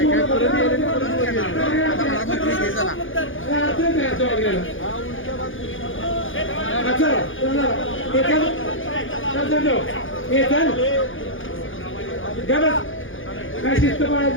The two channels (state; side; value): late; right; 0.58 ms